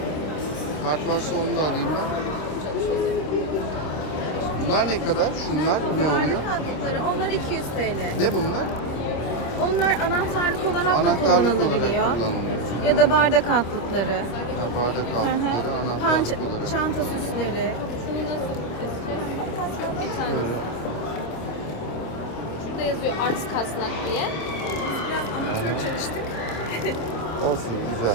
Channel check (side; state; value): right; late; 26 ms